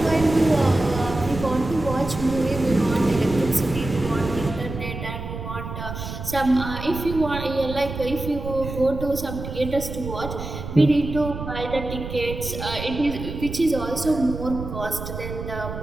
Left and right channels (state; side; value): noise; right; rumble, 8 dB below the sound